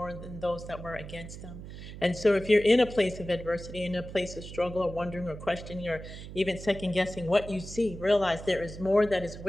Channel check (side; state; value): right; noise; hum, 12 dB below the sound